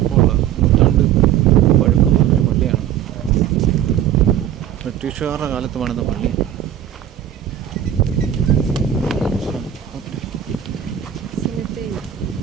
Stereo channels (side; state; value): left; quieter; 10.5 dB